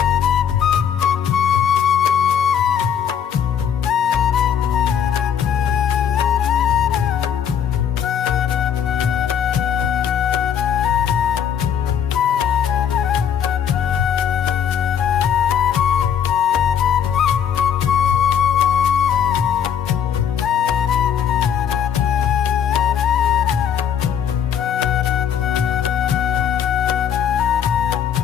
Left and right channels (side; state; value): right; quieter; 8.6 dB